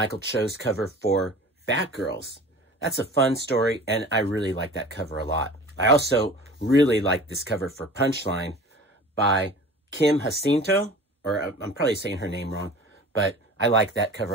Cho's cover for Batgirls. That's a fun story, and I really like that cover a lot. I also really like this cover for Punchline by Kim Jacinto, or I'm probably saying her name wrong, but I like that cover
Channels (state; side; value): normal; both; correlation 0.41